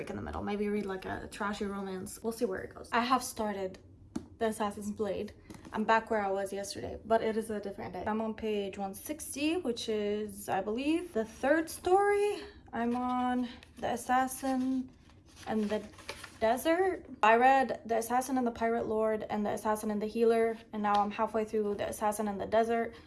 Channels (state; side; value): identical; both; correlation 1.00